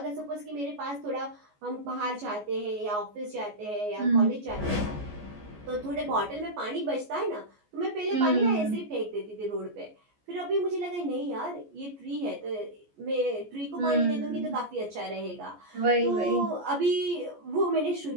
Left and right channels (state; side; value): late; left; 14 ms